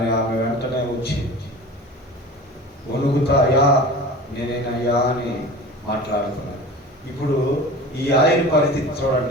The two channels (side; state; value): both; normal; correlation 0.37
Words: ఆమె వెంటనే వచ్చి వణుకుతా, అయ్యా నేనేనయ్యా అని మాట్లాడుతున్నాను. ఇప్పుడు ఈ ఆయన పరిస్థితి